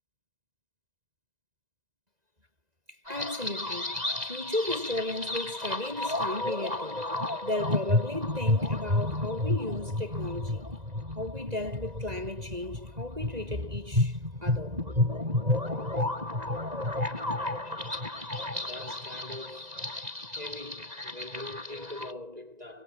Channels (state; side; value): late; left; 1.9 ms